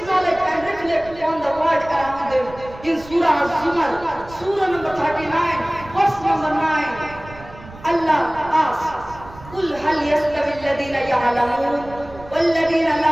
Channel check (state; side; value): noise; right; rumble, 18 dB below the sound